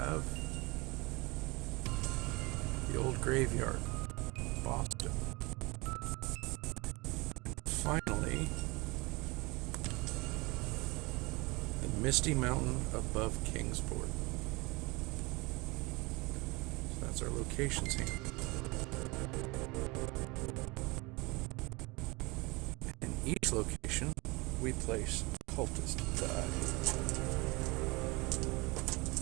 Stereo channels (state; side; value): quieter; left; 24.9 dB